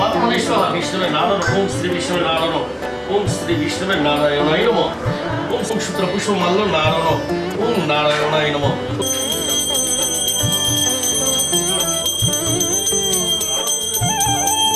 বিষ্ণুর নারায়ণ ওম শ্রী বিষ্ণুর নারায়ণ ওম শ্রী বিষ্ণুর নারায়ণায় নমঃ ওম সূত্র পুষ্প মাল্য নারায়ণ ওম নারায়ণায় নমঃ।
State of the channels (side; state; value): both; identical; correlation 1.00